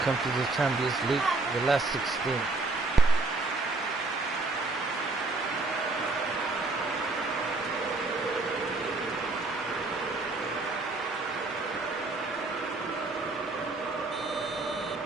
to the Champions League, the last 16.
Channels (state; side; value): quieter; left; 3.4 dB